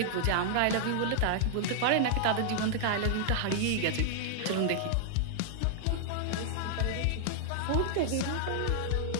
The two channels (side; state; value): both; different; correlation -0.01